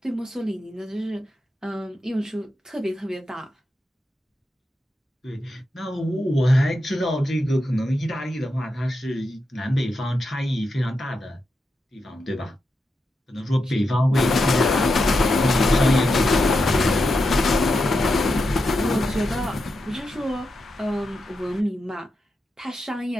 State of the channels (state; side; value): normal; both; correlation 0.87